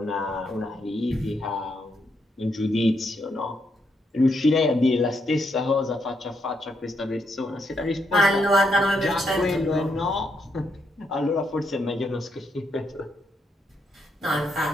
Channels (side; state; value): both; normal; correlation 0.78